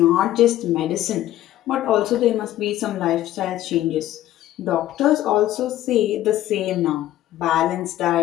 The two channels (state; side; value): quieter; right; 13.8 dB